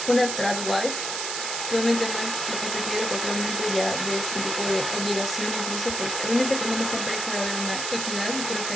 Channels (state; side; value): noise; right; hiss, 2 dB below the sound